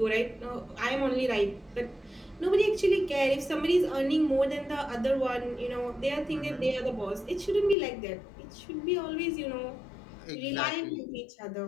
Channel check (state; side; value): drops out; right; at 7.8 s